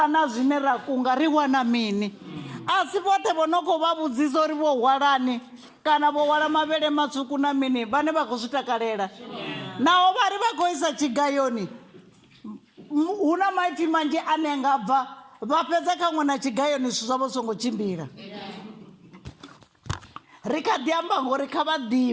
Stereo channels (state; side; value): identical; both; correlation 1.00